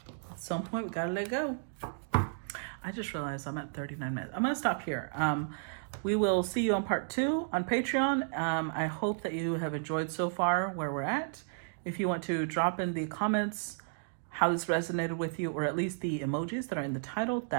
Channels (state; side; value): silent; left; digital silence